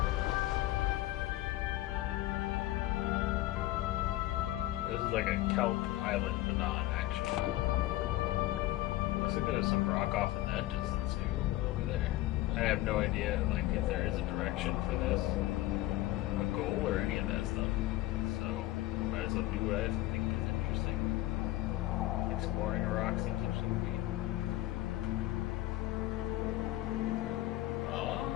This is like a kelp island, but not actually. Looks like there's some rock off in that distance too, over there. I have no idea, like, if there is a direction for this, a goal, or any of that stuff. So, might as well do what I think is interesting. Exploring a rock seems interesting to me.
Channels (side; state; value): right; quieter; 16.6 dB